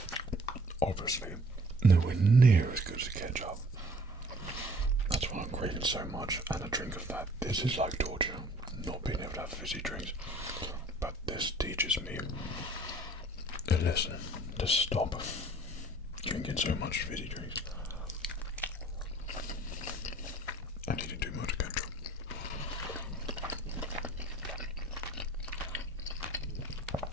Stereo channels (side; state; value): both; normal; correlation 0.53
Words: Obviously, nowhere near as good as ketchup. That's why I'm craving so much, and a drink of that. This is like torture, not being able to have fizzy drinks. But this teaches me a lesson to stop drinking so much fizzy drinks. And eating too much ketchup.